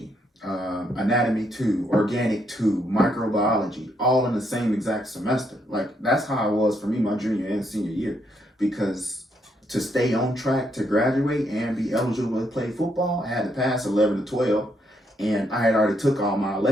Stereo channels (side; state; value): both; normal; correlation 0.75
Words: anatomy 2, organic 2, microbiology, all in the same exact semester. Like, that's how it was for me my junior and senior year, because to stay on track to graduate and be eligible to play football, I had to pass 11 to 12, and I had already took all my